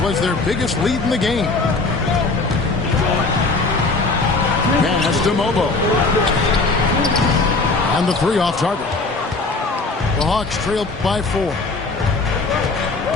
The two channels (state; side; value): quieter; right; 3.6 dB